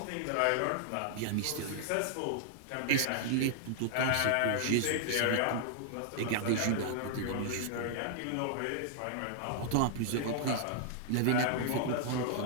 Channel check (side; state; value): both; different; correlation -0.01